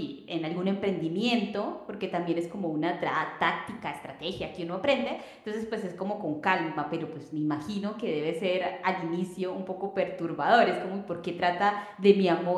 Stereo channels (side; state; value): both; identical; correlation 1.00